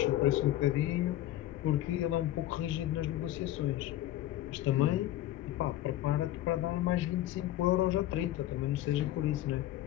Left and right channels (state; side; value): quieter; right; 14.0 dB